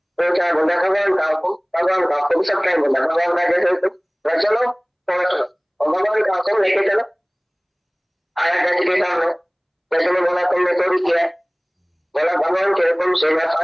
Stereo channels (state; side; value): identical; both; correlation 1.00